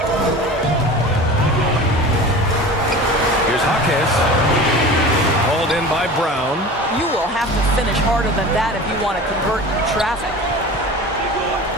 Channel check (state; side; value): normal; both; correlation 0.36